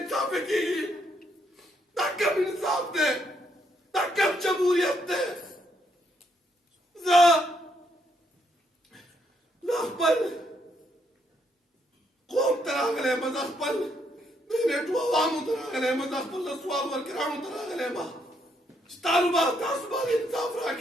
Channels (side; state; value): both; normal; correlation 0.74